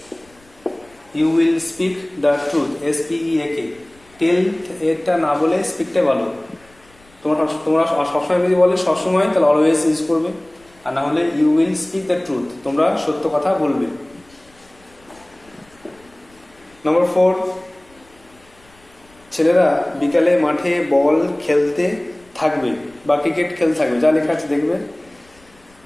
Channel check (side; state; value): left; noise; rumble, 30 dB below the sound